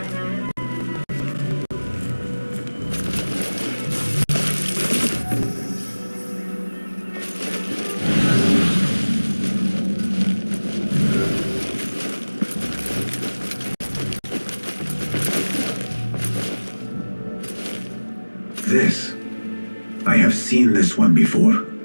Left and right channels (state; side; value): inverted; both; correlation -1.00